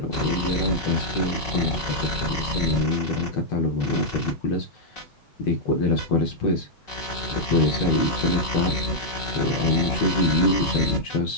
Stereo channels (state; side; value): late; right; 5.4 ms